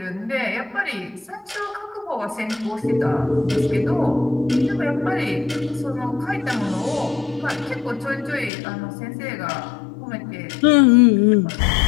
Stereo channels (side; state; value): right; drops out; at 8.5 s